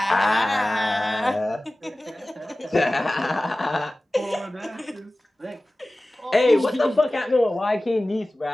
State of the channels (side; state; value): both; normal; correlation 0.97